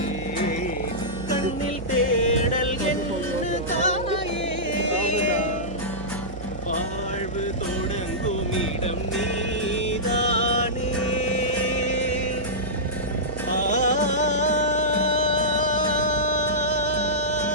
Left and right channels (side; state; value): right; noise; hum, 11 dB below the sound